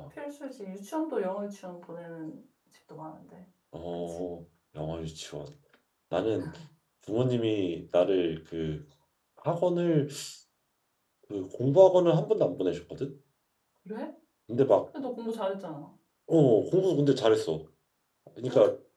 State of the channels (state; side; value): identical; both; correlation 1.00